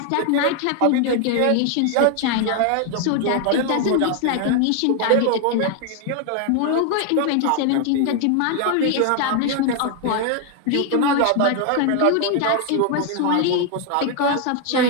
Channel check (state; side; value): different; both; correlation 0.00